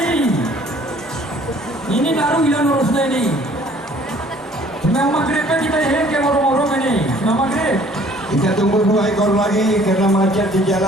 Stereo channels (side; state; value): both; normal; correlation 0.56